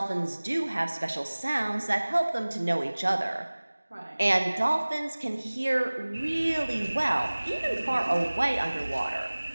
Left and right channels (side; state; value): both; inverted; correlation -1.00